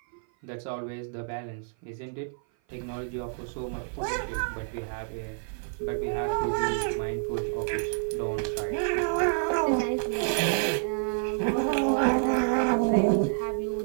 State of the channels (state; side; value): silent; left; 55 dB below the other